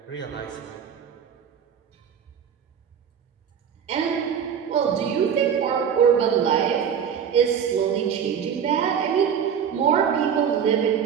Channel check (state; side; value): quieter; left; 7.9 dB